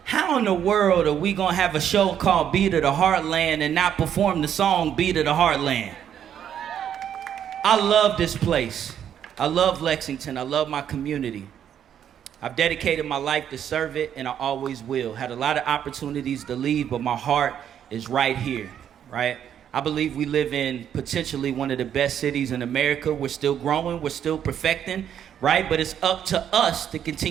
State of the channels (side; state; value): left; quieter; 9.4 dB